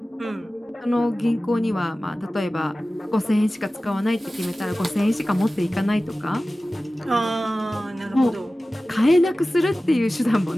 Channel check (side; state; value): both; normal; correlation 0.96